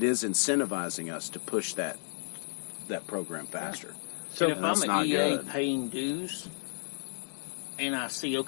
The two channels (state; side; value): silent; right; digital silence